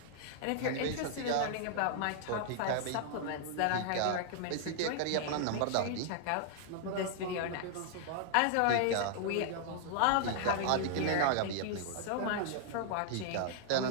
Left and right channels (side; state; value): both; different; correlation -0.01